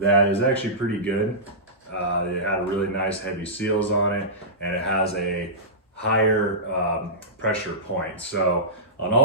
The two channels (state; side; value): normal; both; correlation -0.17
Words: is actually pretty good. It had really nice heavy seals on it, and it has a higher pressure point. So on